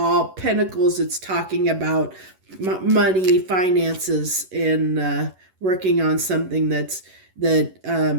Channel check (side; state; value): left; late; 11 ms